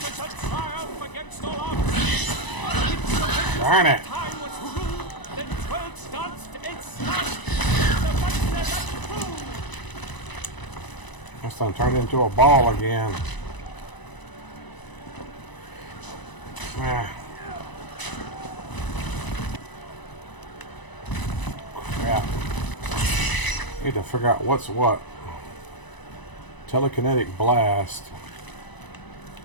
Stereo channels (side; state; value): right; late; 1.0 ms